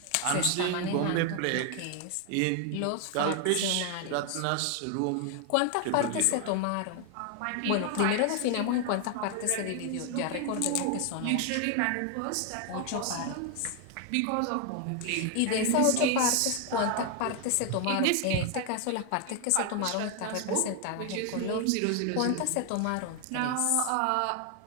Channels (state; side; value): different; both; correlation 0.01